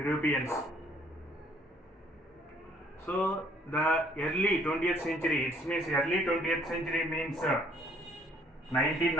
So the early 20th century, it means early 20th century means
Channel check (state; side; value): normal; both; correlation 0.62